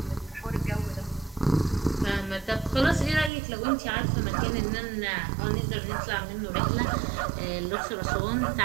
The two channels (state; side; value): drops out; left; at 3.3 s